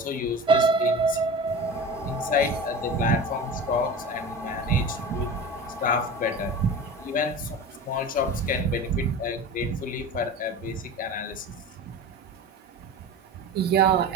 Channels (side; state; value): both; normal; correlation 0.32